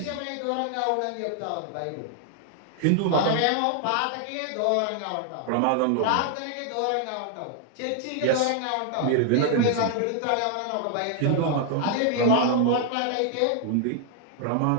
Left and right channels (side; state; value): both; different; correlation 0.00